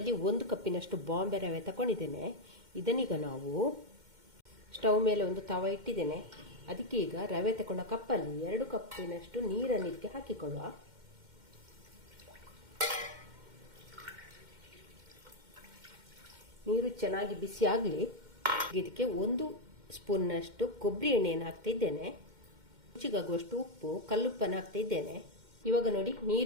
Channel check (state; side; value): late; left; 2.1 ms